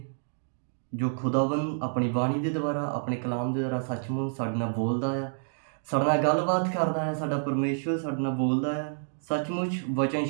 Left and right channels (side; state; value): left; silent; digital silence